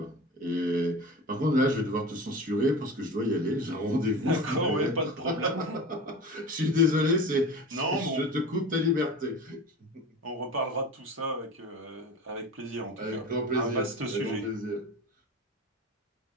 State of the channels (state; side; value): normal; both; correlation 0.33